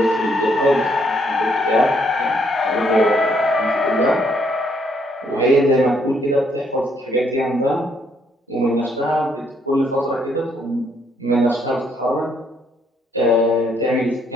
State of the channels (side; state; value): both; normal; correlation 0.70